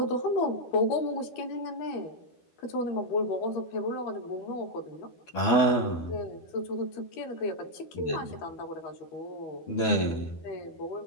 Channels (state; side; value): late; right; 12 ms